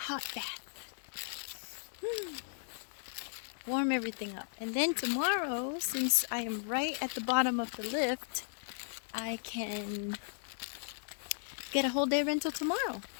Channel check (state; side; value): silent; right; digital silence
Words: bath. Warm everything up. And then tomorrow, since I am right at the bottom of the lift, I can get a whole day rental tomorrow.